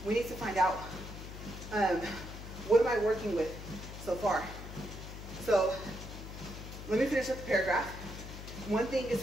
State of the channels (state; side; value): noise; left; hum, 11 dB below the sound